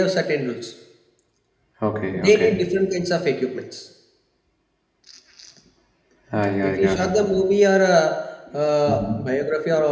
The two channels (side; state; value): both; identical; correlation 1.00